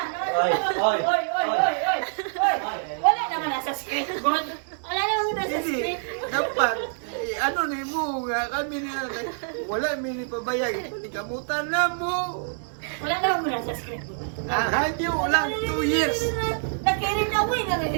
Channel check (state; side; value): silent; left; digital silence